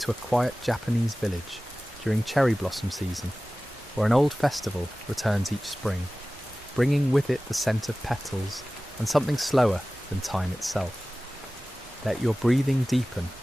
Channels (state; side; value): normal; both; correlation 0.97